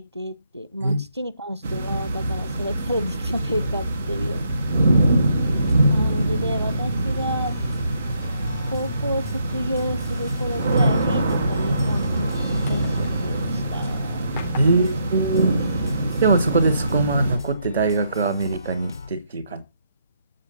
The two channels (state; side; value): inverted; both; correlation -0.75